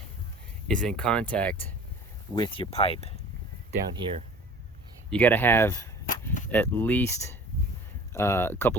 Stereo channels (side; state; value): both; normal; correlation 0.45